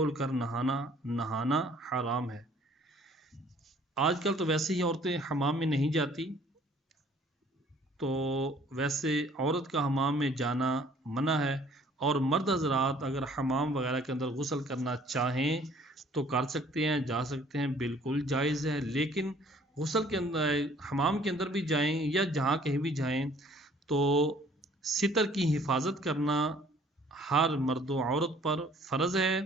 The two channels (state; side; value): normal; both; correlation 0.57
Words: کر نہانا حرام ہے۔ آج کل تو ویسے ہی عورتیں حمام میں نہیں جاتی، تو ویسے عورت کا حمام میں جانا منع ہے، اور مرد حضرات اگر حمام وغیرہ کے اندر غسل کرنا چاہیں تو کر سکتے ہیں، جا سکتے ہیں، بالکل جائز ہے۔ لیکن غسل کے اندر حمام کے اندر بھی جائیں یا جہاں کہیں بھی جائیں تو ستر کی حفاظت کرنا ہر مرد و عورت پر فرض ہے۔